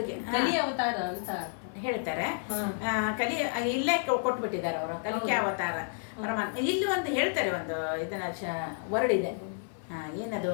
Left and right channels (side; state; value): right; silent; 57 dB below the other